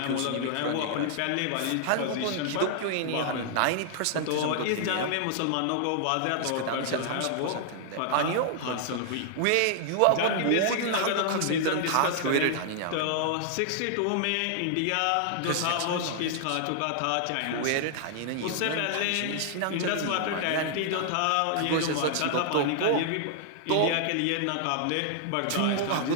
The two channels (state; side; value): different; both; correlation -0.01